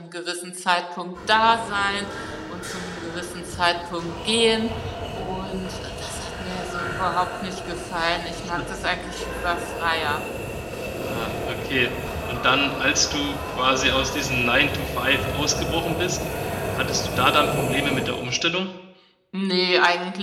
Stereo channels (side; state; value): both; identical; correlation 1.00